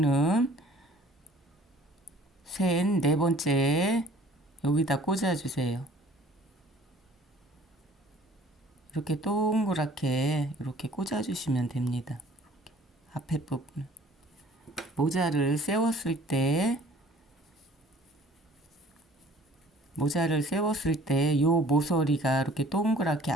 셋, 네 번째 여기다 꽂아주세요. 이렇게 동그랗게 이렇게 꽂아주시면 됩니다. 앞에 부분. 모자를 세웠을 때 요 모서리가 이렇게 동그랗게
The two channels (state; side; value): normal; both; correlation 0.52